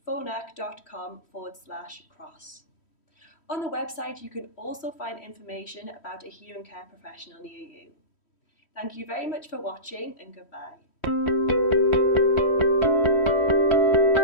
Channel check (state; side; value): late; right; 3.1 ms